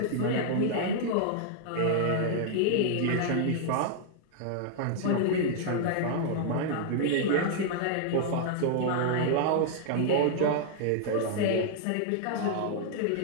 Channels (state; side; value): different; both; correlation -0.01